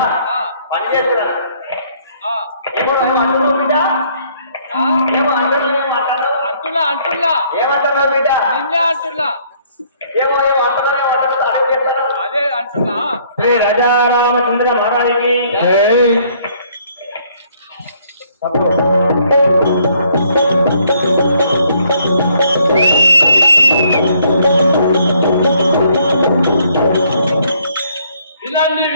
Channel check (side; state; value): both; inverted; correlation -0.65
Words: పని చేస్తున్నాను. అంటున్నా ఏమంటారు బిడ్డ? నిన్నే అంటున్నా. అదే అంటున్నా. శ్రీ రాజా రామచంద్ర మహారాజుకి